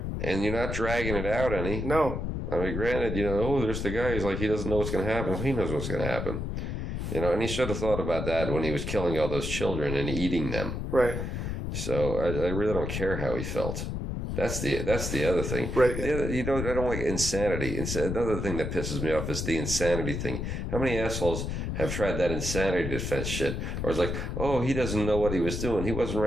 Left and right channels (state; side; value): noise; left; rumble, 3 dB below the sound